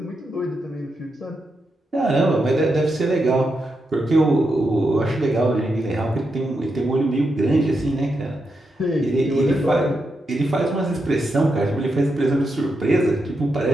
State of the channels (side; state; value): both; normal; correlation 0.85